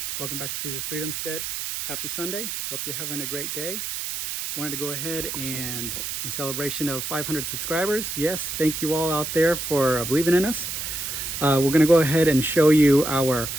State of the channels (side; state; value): right; noise; hiss, 4 dB below the sound